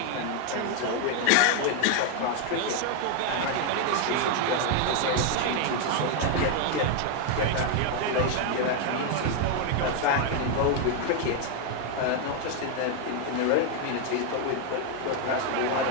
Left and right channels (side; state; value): both; different; correlation 0.00